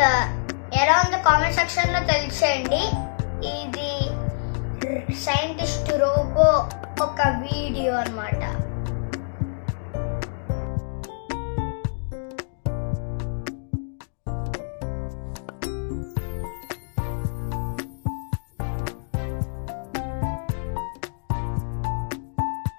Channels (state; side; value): silent; right; digital silence